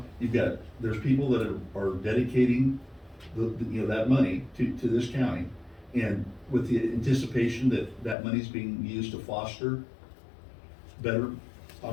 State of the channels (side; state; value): right; drops out; at 8.2 s